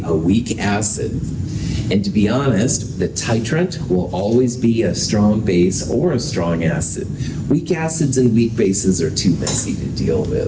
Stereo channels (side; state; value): both; identical; correlation 1.00